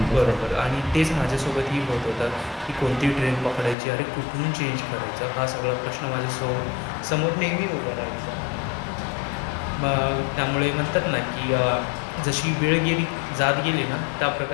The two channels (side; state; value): right; drops out; at 3.8 s